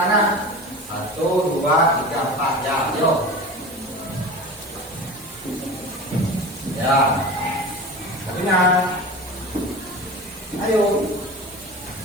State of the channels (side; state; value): both; normal; correlation 0.33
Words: 1, 2, 3, 4. Ya, yo. Ya. Kabinan. Ayo.